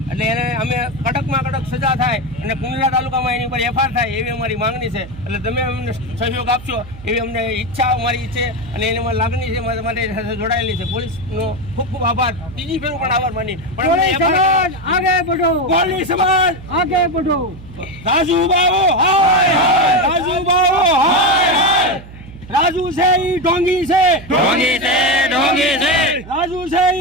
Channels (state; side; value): noise; right; hum, 17 dB below the sound